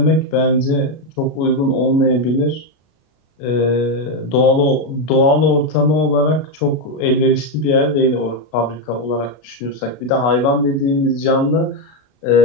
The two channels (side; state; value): right; late; 33 ms